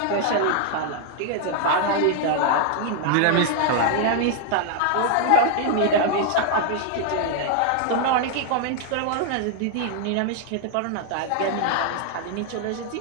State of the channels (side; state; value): both; different; correlation 0.00